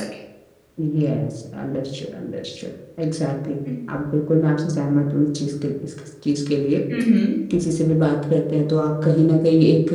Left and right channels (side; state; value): both; identical; correlation 1.00